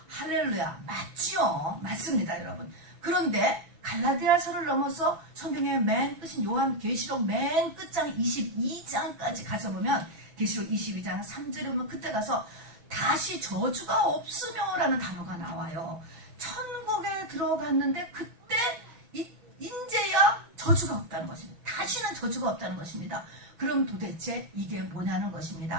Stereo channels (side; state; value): left; late; 6.0 ms